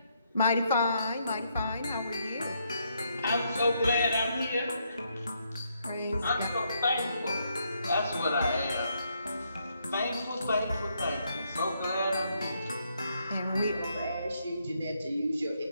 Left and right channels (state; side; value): inverted; both; correlation -0.76